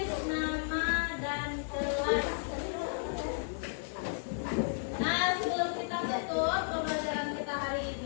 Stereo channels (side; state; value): right; silent; digital silence